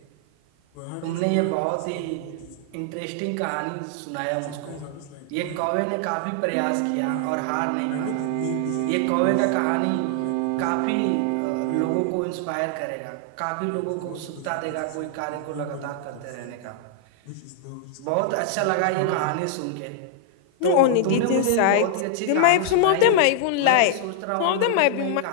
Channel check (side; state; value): both; different; correlation 0.00